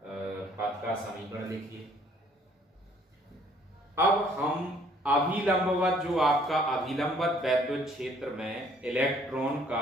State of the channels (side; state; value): both; normal; correlation 0.60